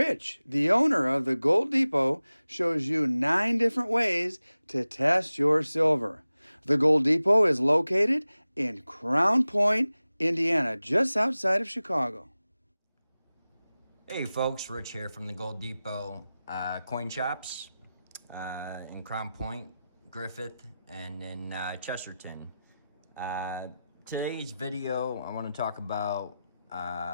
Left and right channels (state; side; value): inverted; both; correlation -0.95